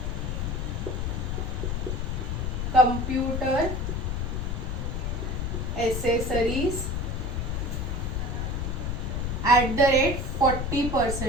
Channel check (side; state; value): left; noise; rumble, 1 dB below the sound